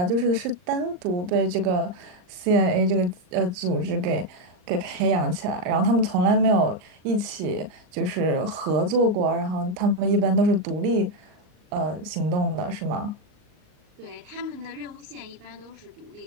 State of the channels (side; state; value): left; late; 38 ms